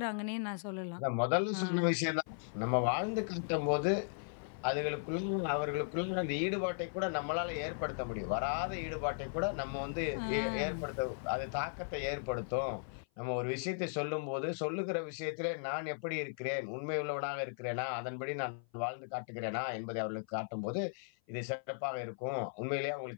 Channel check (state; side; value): silent; right; 53 dB below the other